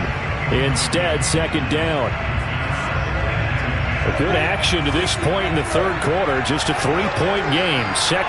Instead, 2nd down. A good action to this point in the 3rd quarter. Just a 3-point game.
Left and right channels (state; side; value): identical; both; correlation 1.00